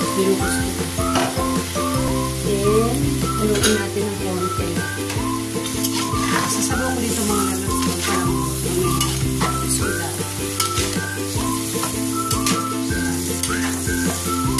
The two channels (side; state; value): both; identical; correlation 1.00